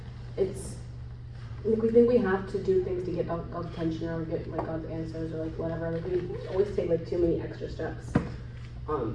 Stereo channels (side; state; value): both; identical; correlation 1.00